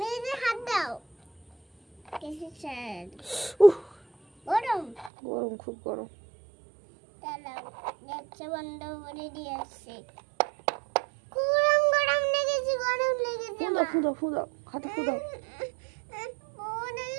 নিজে হাত দাও। কিসের? গরম গরম, খুব গরম। দাঁড়াও, গ্যাসটা বন্ধ করে দিয়ে আসছি। গরম গরম লেগেছে, গরম লেগেছে। ফুদাও ফুদাও ফুদাও, হাতে ফুদাও।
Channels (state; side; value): drops out; left; at 5.1 s